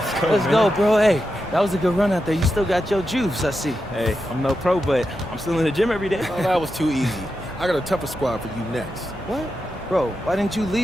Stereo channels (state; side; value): normal; both; correlation 0.88